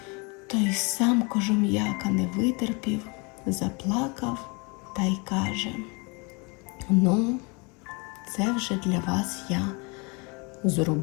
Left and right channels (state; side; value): quieter; right; 30.2 dB